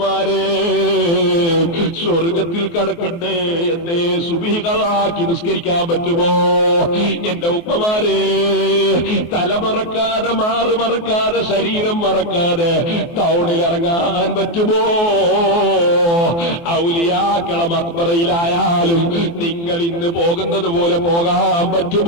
സ്വർഗത്തിൽ കടക്കണ്ടേ എന്നെ സുബിഹികളാക്കി നിസ്കരിക്കാൻ പറ്റുമോ? എന്റെ ഉമ്മമാരെ, തലമറക്കാതെ മാറ് മറക്കാതെ ശരീരം മറക്കാതെ ടൗണിൽ ഇറങ്ങാൻ പറ്റുമോ? ഔലിയാക്കള മക്ബറയിലായാലും നിങ്ങൾ ഇന്ന് പോകുന്നത് പോലെ പോകാൻ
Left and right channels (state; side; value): late; right; 24 ms